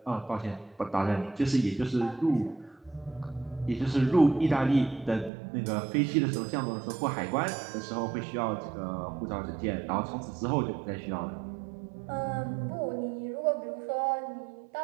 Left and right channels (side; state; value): left; drops out; at 5.3 s